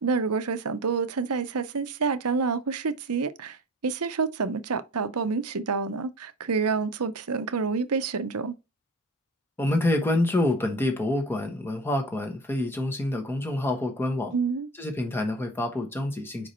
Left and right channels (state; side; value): normal; both; correlation 0.35